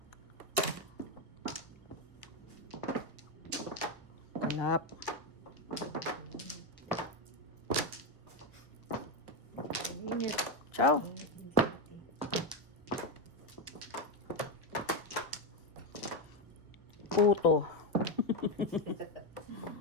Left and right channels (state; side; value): normal; both; correlation 0.08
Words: Kalap. Init. Ciao. Puto.